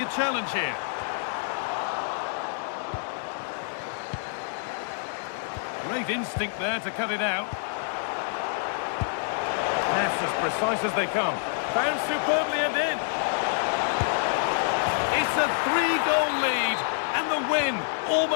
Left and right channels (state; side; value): silent; right; digital silence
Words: a challenge here? Great instinct there to cut it out. That's as precise as they come. Found superbly and in. It's a 3-goal lead, and the win